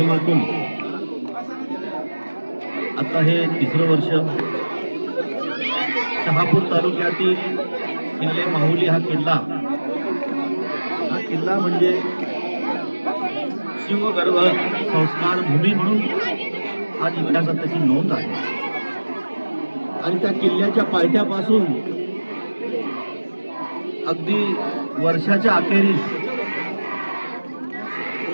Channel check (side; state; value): both; inverted; correlation -1.00